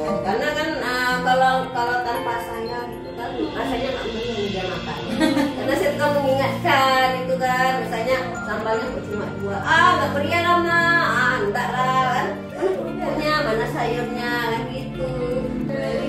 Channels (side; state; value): both; identical; correlation 1.00